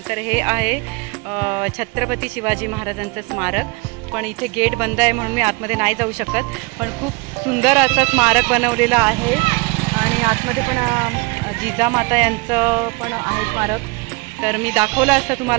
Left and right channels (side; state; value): left; quieter; 27.1 dB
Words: तर हे आहे छत्रपती शिवाजी महाराजांचं स्मारक. पण इथे गेट बंद आहे म्हणून मी आतमध्ये नाही जाऊ शकत. पण खूप सुंदर असं स्मारक बनवलेलं आहे आणि आतमध्ये पण जिजामाता यांचं पण आहे स्मारक. तर मी दाखवलं असतं